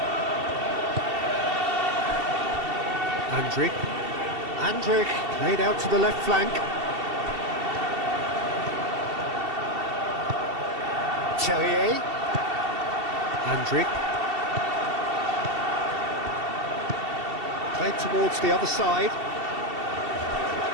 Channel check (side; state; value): left; late; 2.7 ms